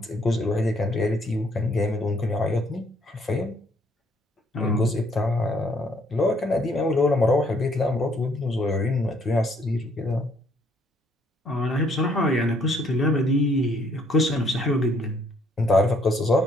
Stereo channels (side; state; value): both; normal; correlation 0.66